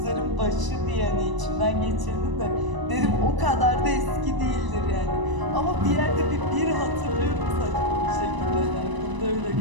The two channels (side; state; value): left; late; 1.0 ms